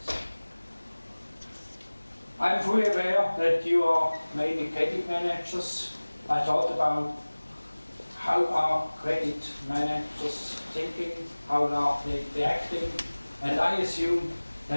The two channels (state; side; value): inverted; both; correlation -1.00